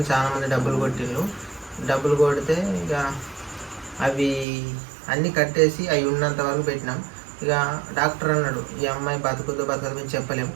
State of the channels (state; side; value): drops out; left; at 4.5 s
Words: చాలా మంది డబ్బులు కొట్టిండ్రు. డబ్బులు కొడితే ఇక అవి అన్నీ కట్టేసి అవి ఉన్నంత వరకు పెట్టినాం. ఇక డాక్టర్ అన్నాడు, ఈ అమ్మాయి బతుకుతో మేము చెప్పలేము,